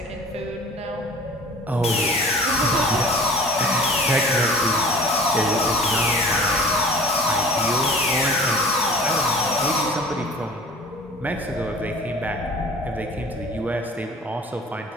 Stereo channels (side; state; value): both; normal; correlation 0.45